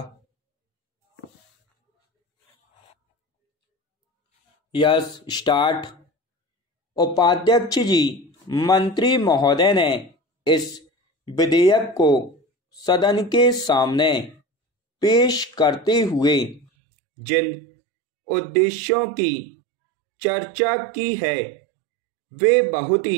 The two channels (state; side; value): drops out; left; at 16.7 s